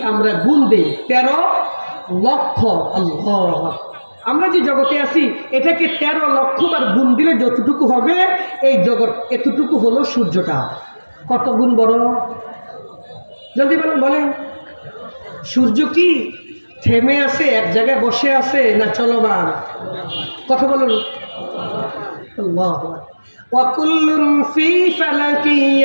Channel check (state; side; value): inverted; both; correlation -1.00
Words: আমরা গুণ দিই, 13 লক্ষ, আল্লাহ, আমরা যে জগতে আছি এটাকে 13 লক্ষ বার গুণ দিলে যতটুকু হবে, এই জগৎ এতটুকু হলো সূর্যটা। কত গুণ বড়? জলদি বলেন, বলেন। সূর্য কি থেমে আছে, এক জায়গায় বসে আছে, না চলমান? কথা বলুন। আল্লাহু আকবার। ওয়া কুল্লুন ফি ফালাকি